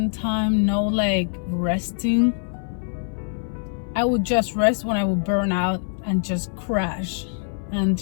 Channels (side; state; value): right; silent; 59 dB below the other